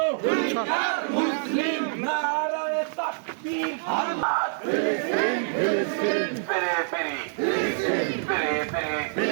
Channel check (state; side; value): silent; left; digital silence